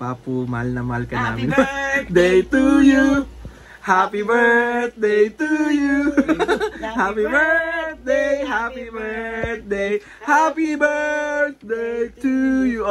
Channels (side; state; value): both; identical; correlation 1.00